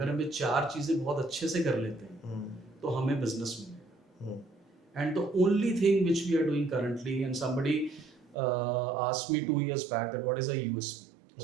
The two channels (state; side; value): drops out; left; at 8.3 s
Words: हमें 4 चीजें बहुत अच्छे से कर लेते हैं तो हमें बिजनेस मिलेगा and the only thing which we are doing currently and somebody asked me 2 years back that what is a USP